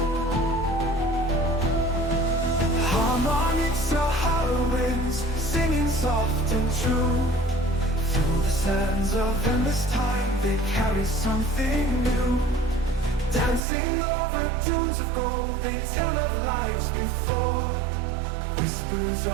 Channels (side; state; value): left; drops out; at 13.6 s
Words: Harmonic Sahara winds, singing soft and true. Through the sands of endless time, they carry something new. Dancing over dunes of gold, they tell of lives before. Whispers